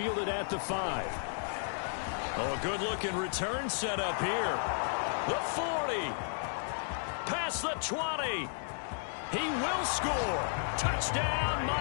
at the 5. Oh, a good-looking return set up here. The 40. Past the 20. He will score. Touchdown,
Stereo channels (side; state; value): right; silent; digital silence